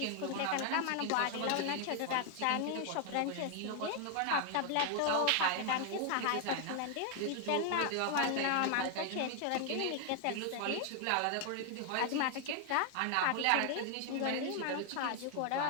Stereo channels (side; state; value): both; different; correlation 0.00